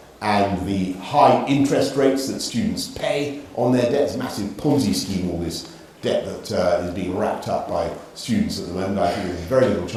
and the high interest rates that students pay on their debt. It's a massive Ponzi scheme, all this debt that is being wrapped up by students at the moment. I think there's very little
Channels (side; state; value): both; identical; correlation 1.00